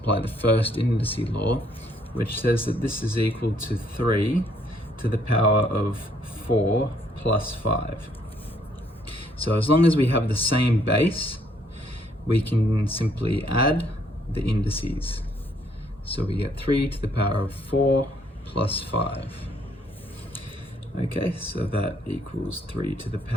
the first indice law, which says that this is equal to 3 to the power of 4 plus 5. So as long as we have the same base, we can simply add the indices. So we get 3 to the power of 4 plus 5. Okay, so that equals 3 to the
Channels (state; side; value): normal; both; correlation 0.67